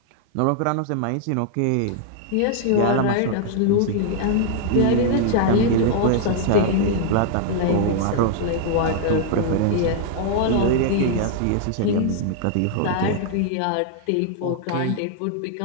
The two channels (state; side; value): different; both; correlation 0.00